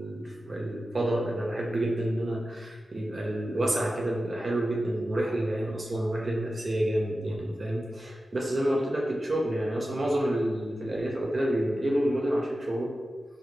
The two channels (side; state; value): both; normal; correlation 0.93